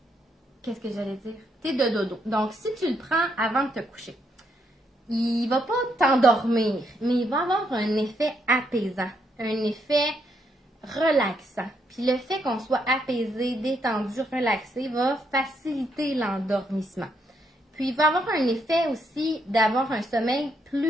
Qu'est-ce que j'allais dire? Thé de dodo. Donc, si tu le prends avant de te coucher, il ne va pas t'endormir, mais il va avoir un effet apaisant, un effet relaxant. Puis le fait qu'on soit apaisé, détendu, relaxé va faciliter l'endormissement. Puis il va avoir un effet aussi d'avoir un sommeil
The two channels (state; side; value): normal; both; correlation 0.76